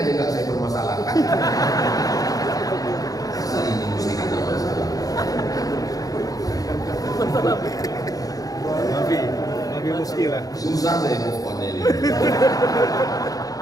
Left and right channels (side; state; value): right; late; 0.17 ms